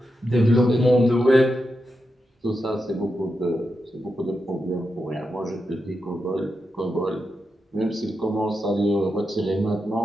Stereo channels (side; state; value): both; normal; correlation 0.87